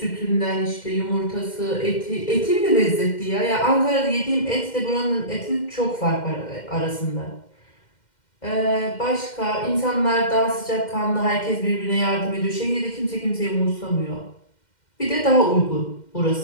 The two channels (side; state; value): right; late; 2.1 ms